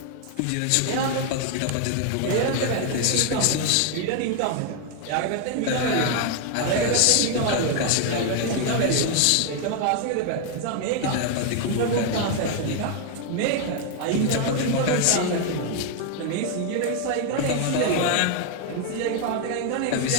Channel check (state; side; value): different; both; correlation 0.00